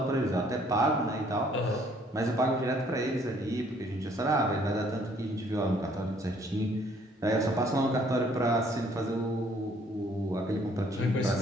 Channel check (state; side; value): normal; both; correlation 0.62